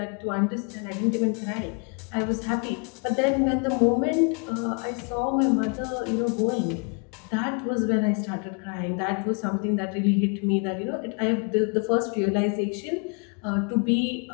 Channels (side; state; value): right; quieter; 38.0 dB